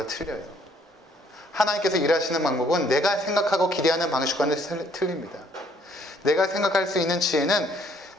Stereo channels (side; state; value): both; normal; correlation 0.64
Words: 틀려요. 하나님께서 일하시는 방법은 내가 생각하고 기대하는 방식과는 틀립니다. 내가 생각할 수 있는 지혜는